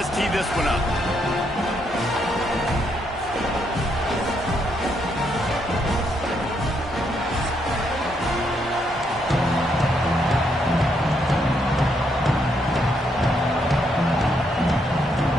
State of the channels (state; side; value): normal; both; correlation 0.76